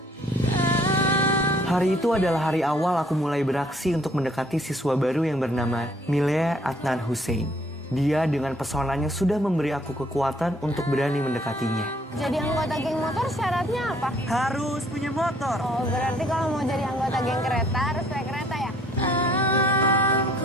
Hari itu adalah hari awal aku mulai beraksi untuk mendekati siswa baru yang bernama Milea Adnan Hussein. Dia dengan pesonanya sudah memberi aku kekuatan untuk berani mendekatinya. Jadi anggota geng motor syaratnya apa? Harus punya motor. Oh, berarti kalau mau jadi anggota geng kereta harus naik kereta ya?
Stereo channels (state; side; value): normal; both; correlation 0.62